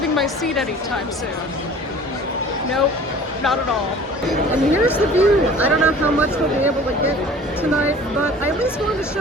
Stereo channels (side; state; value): both; normal; correlation 0.45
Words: my seat anytime soon. Nope, not at all. And here's the view. I don't know how much we'll be able to get tonight, but I at least wanted to